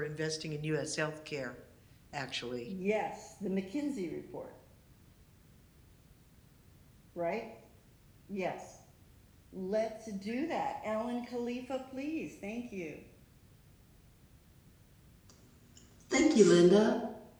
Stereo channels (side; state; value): both; identical; correlation 1.00